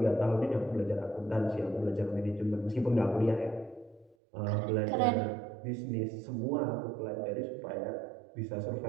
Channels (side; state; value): left; drops out; at 4.2 s